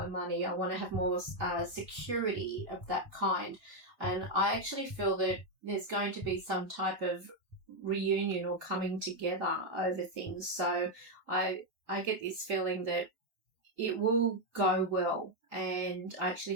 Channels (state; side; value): late; left; 3.5 ms